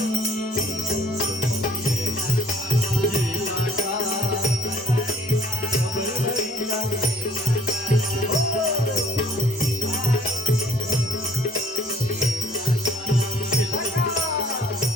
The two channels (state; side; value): normal; both; correlation 0.58